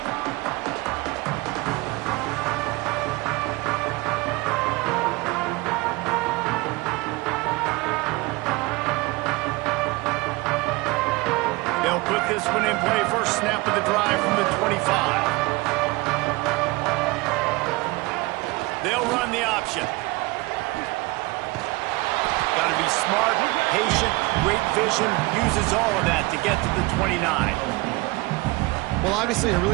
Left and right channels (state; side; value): quieter; left; 23.0 dB